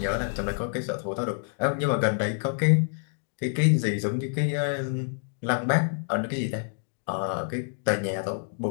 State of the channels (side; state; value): right; silent; digital silence